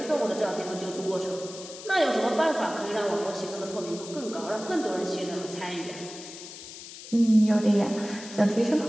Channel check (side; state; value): left; noise; hiss, 14 dB below the sound